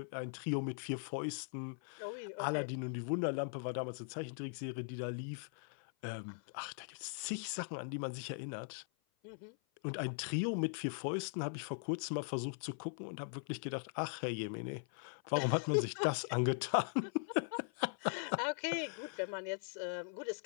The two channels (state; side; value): silent; right; 51 dB below the other